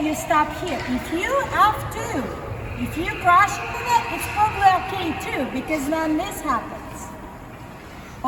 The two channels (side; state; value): both; identical; correlation 1.00